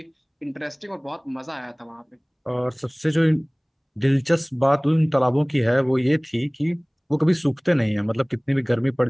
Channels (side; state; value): both; identical; correlation 1.00